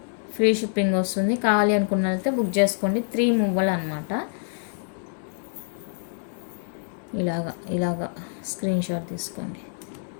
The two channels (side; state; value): right; silent; digital silence